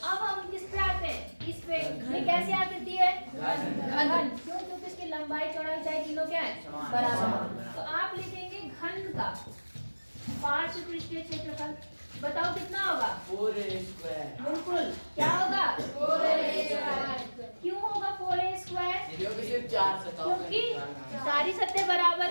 हम किस पे आते हैं? इस पे। ये कैसे आती है? घन। क्यों? क्योंकि इसकी लंबाई चौड़ाई ऊंचाई तीनों क्या है? बराबर। तो आप लिखेंगे घन का पार्श्व पृष्ठीय क्षेत्रफल। बताओ कितना होगा? 4a²। बिल्कुल। क्या होगा? 4a²। क्यों होगा 4a²? क्योंकि सिर्फ 4 सतह क्योंकि सारी सतह बराबर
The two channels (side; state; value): both; inverted; correlation -1.00